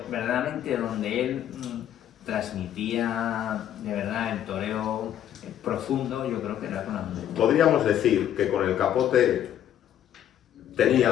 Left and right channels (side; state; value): right; quieter; 10.8 dB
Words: verdaderamente donde él transmitía de verdad el toreo profundo, yo creo que era con la muleta. Podríamos decir que con el capote